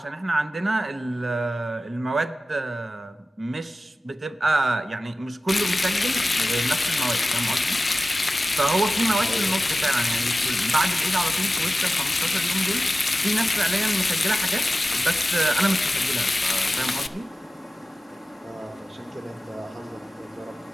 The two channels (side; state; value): both; normal; correlation 0.94